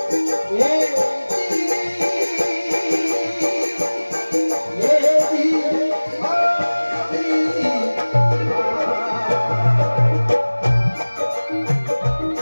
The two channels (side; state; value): both; inverted; correlation -1.00